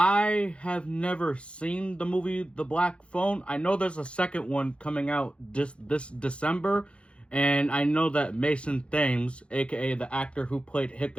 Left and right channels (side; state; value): right; late; 0.059 ms